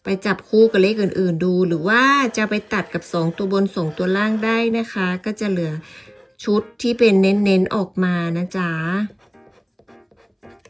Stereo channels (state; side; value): identical; both; correlation 1.00